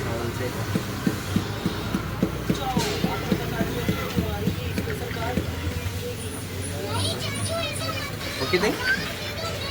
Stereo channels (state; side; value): identical; both; correlation 1.00